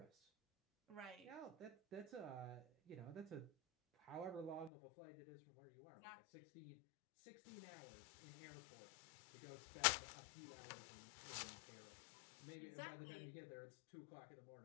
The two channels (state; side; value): drops out; right; at 4.7 s